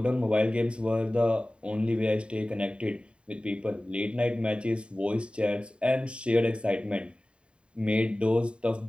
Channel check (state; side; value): late; left; 0.055 ms